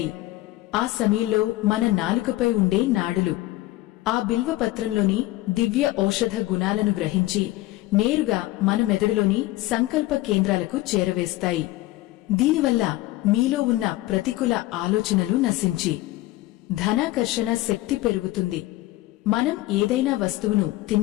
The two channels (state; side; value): quieter; right; 17.8 dB